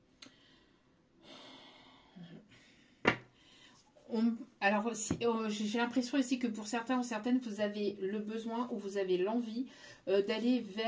Alors, j'ai l'impression ici que pour certains ou certaines, vous avez le besoin ou vous avez l'envie d'aller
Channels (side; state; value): both; identical; correlation 1.00